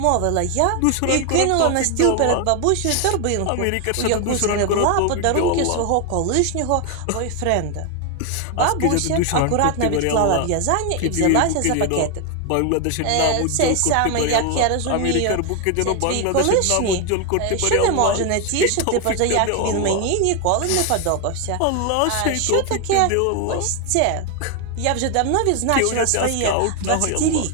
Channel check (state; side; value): different; both; correlation 0.01